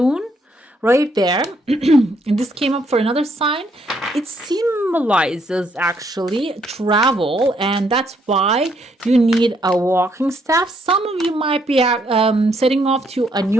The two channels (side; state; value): both; normal; correlation 0.72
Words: right there and this came up for another sign. It symbolizes actually travel, and that's why you need a walking staff. Some of you might be setting off to a